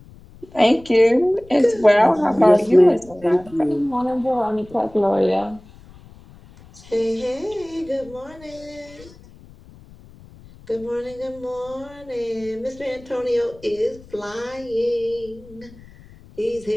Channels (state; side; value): noise; left; rumble, 22 dB below the sound